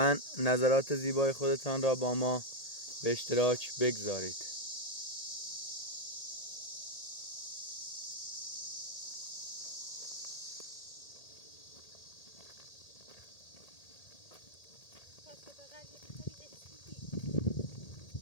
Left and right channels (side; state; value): right; late; 1.8 ms